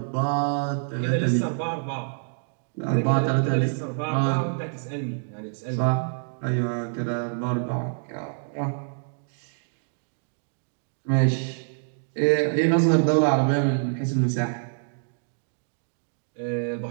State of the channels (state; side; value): silent; left; digital silence